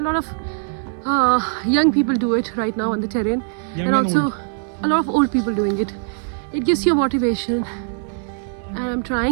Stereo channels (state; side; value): silent; left; digital silence